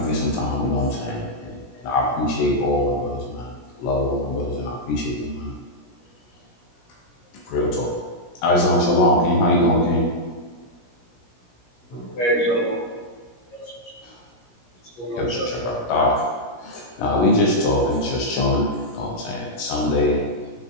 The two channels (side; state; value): right; late; 17 ms